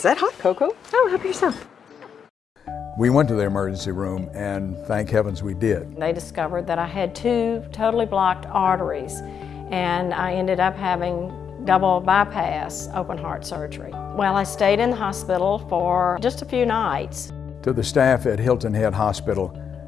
that hot cocoa? Oh, help yourself. We went to the emergency room, and thank heavens we did. They discovered that I had 2 totally blocked arteries, and I ended up having double bypass open heart surgery. Well, I stayed in the hospital for just a few nights. To the staff at Hilton Head Hospital,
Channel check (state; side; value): quieter; right; 7.3 dB